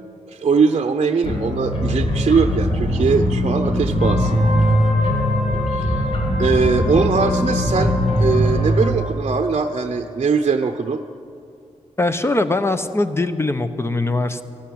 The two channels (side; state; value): both; normal; correlation 0.72